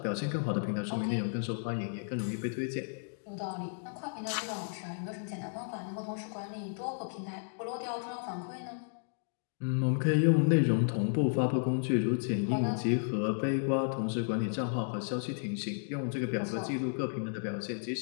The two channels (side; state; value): right; silent; digital silence